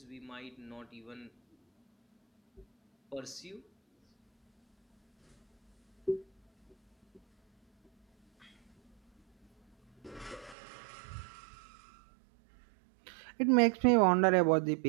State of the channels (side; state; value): left; drops out; at 10.6 s